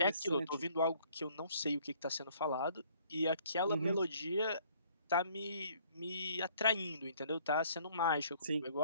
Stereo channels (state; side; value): inverted; both; correlation -0.60